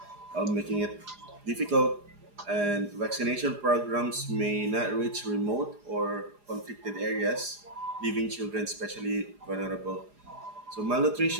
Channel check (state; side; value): late; left; 4.9 ms